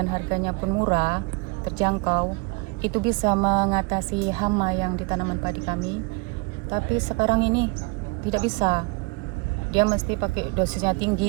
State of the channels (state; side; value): quieter; left; 28.6 dB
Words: harganya pun murah, terjangkau, itu bisa mengatasi hama yang di tanaman padi kami. Tapi sekarang ini tidak bisa. Dia mesti pakai dosisnya